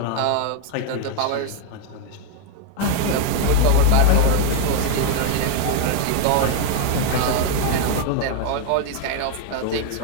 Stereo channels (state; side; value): different; both; correlation 0.01